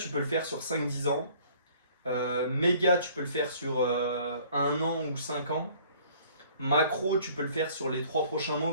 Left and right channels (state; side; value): inverted; both; correlation -0.55